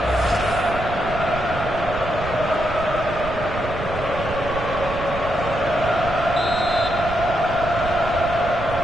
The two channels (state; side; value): noise; right; rumble, 9 dB below the sound